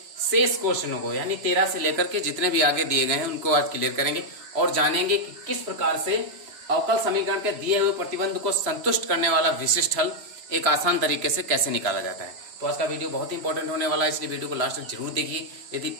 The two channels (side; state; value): left; late; 3.0 ms